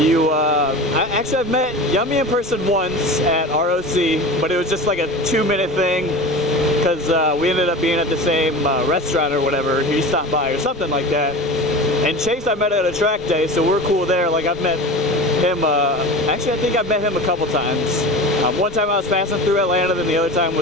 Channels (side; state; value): both; normal; correlation 0.32